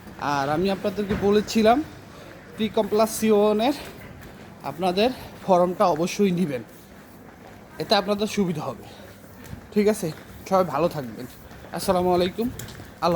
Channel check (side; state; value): both; identical; correlation 1.00